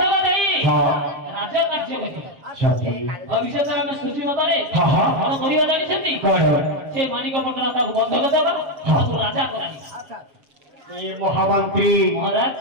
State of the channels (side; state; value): left; late; 7.5 ms